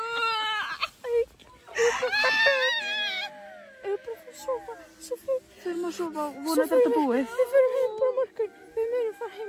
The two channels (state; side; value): identical; both; correlation 1.00